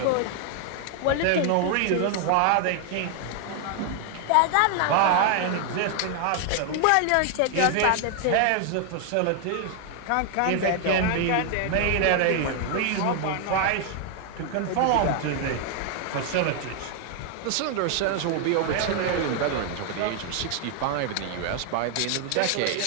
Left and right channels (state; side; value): different; both; correlation 0.00